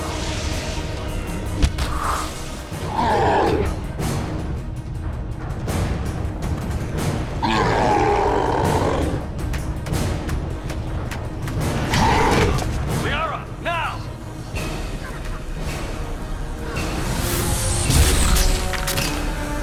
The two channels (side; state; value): both; identical; correlation 1.00